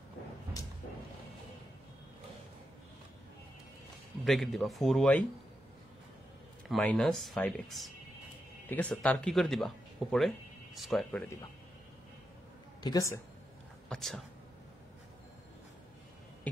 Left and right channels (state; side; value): normal; both; correlation 0.86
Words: ব্রেকেট দিবা 4y মাইনাস 5x, ঠিক আছে? তার কি করে দিবা? উপরে স্কোয়ার করে দিবা, ঠিক আছে? আচ্ছা,